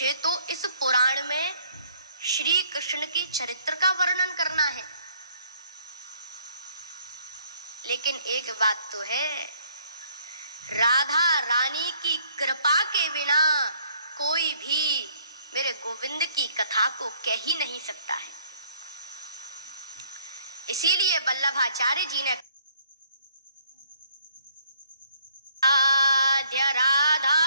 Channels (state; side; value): inverted; both; correlation -0.64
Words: तो इस पुराण में श्री कृष्ण की चरित्र का वर्णन करना है, लेकिन एक बात तो है, राधा रानी की कृपा के बिना कोई भी मेरे गोविंद की कथा को कह ही नहीं सकता है। इसीलिए वल्लभाचार्य जी ने आद्य राधा